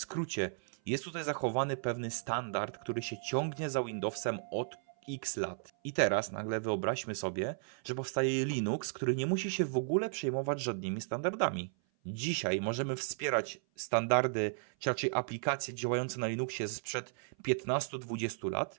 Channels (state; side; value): silent; left; 55 dB below the other